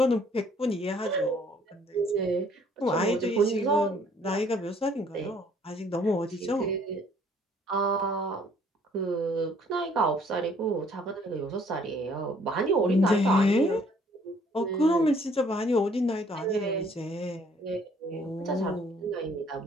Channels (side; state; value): both; normal; correlation 0.61